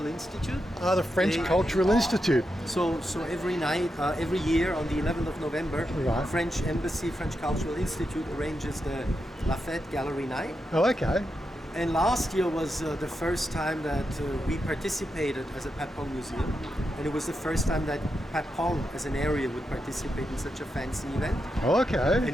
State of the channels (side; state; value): both; normal; correlation 0.86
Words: Institute. the French Cultural Institute. So every night, every year on the 11th of November, Right. French Embassy, French Cultural Institute arranges the La Fête Gallery Night. Oh, okay. And last year was the first time that we participated as a Patpong Museum. And it was the first time that Patpong as an area would participate in such a fancy event. Oh, okay.